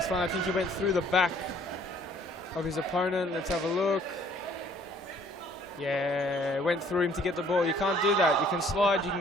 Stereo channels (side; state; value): both; normal; correlation 0.58